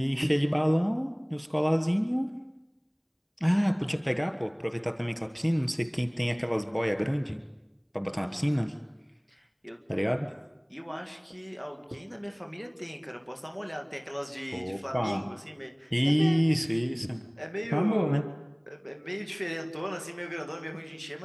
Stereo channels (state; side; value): identical; both; correlation 1.00